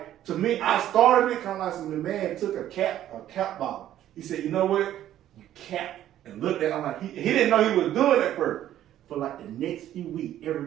to me, I started it kind of like some, the man took a cap bottle. He said, you know what? You cap. And looked at it, I'm like, he didn't know he was doing it first. For like the next few weeks,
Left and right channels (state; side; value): quieter; left; 12.2 dB